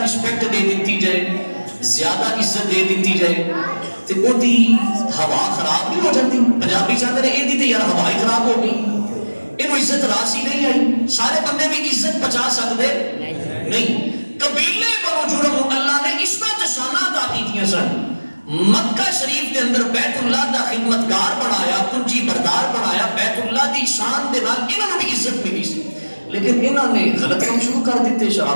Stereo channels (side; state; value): both; inverted; correlation -1.00